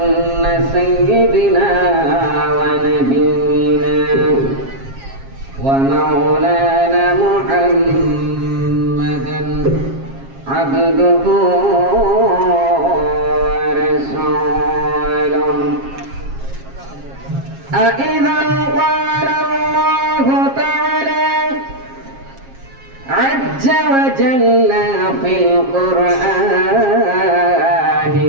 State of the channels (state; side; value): late; left; 7.4 ms